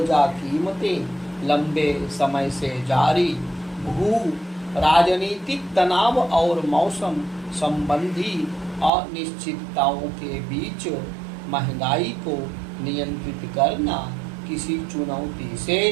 कीमतें लंबे समय से जारी भू राजनीतिक तनाव और मौसम संबंधी अनिश्चितताओं के बीच महंगाई को नियंत्रित करना किसी चुनौती से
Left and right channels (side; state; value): left; drops out; at 8.9 s